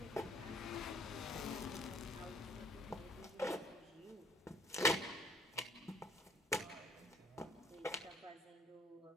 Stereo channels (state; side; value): normal; both; correlation 0.59